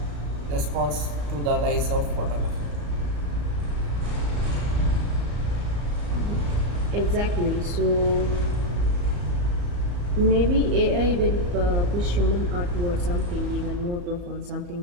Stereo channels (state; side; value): late; left; 34 ms